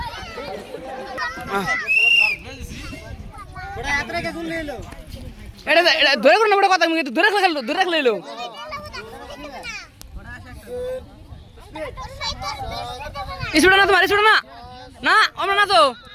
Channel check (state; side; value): identical; both; correlation 1.00